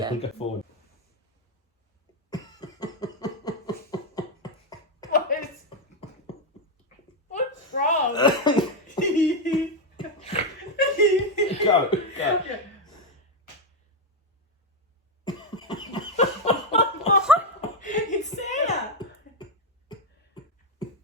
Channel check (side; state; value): both; normal; correlation 0.04